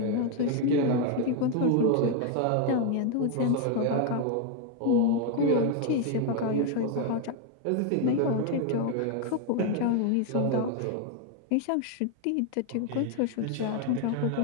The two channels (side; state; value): both; different; correlation 0.01